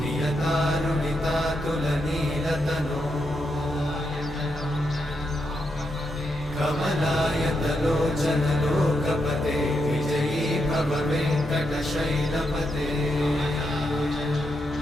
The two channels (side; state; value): both; normal; correlation 0.82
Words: कमलायतलोचनलोकपते विजयी भव वेङ्कटशैलपते